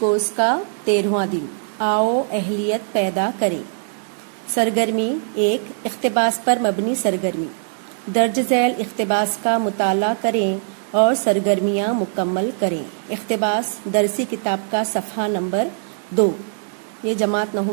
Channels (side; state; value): left; silent; 59 dB below the other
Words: کا 13واں دن، آؤ اہلیت پیدا کریں۔ سرگرمی 1، اقتباس پر مبنی سرگرمی۔ درج ذیل اقتباس کا مطالعہ کریں اور سرگرمیاں مکمل کریں۔ اقتباس درسی کتاب کا صفحہ نمبر 2، یہ جماعت